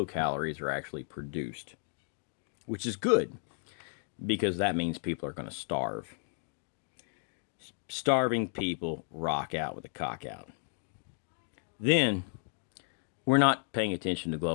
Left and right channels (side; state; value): right; silent; 56 dB below the other